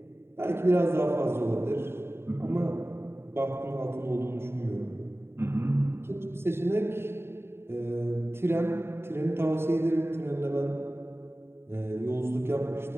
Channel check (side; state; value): left; late; 0.12 ms